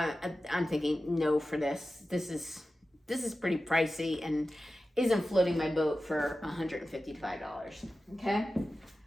I'm thinking no for this. This is pretty pricey and isn't floating my boat for $155. Okay.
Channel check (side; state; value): both; normal; correlation 0.94